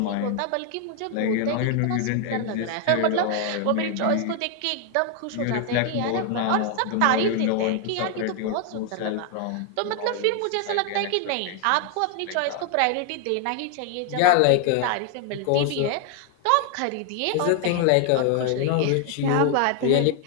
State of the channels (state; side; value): different; both; correlation 0.00